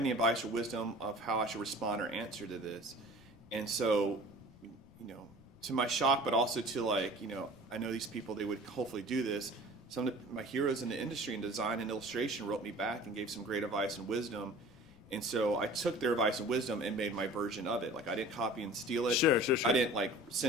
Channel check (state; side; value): noise; left; rumble, 26 dB below the sound